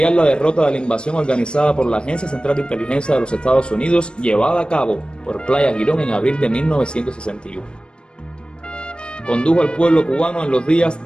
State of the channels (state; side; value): late; right; 0.054 ms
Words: la derrota de la invasión organizada por la Agencia Central de Inteligencia de los Estados Unidos llevada a cabo por Playa Girón en abril de 1961. Condujo al pueblo cubano en los días